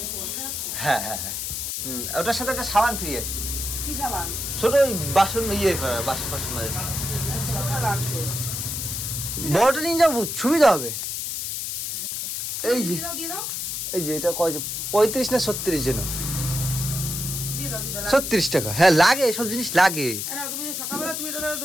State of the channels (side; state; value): left; noise; hiss, 3 dB below the sound